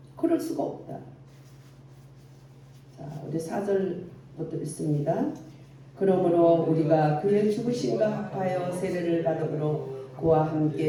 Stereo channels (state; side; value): identical; both; correlation 1.00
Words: 그럴 수가 없다. 자, 우리 4절부터 읽습니다. 그러므로 우리가 그의 죽으심과 합하여 세례를 받음으로 그와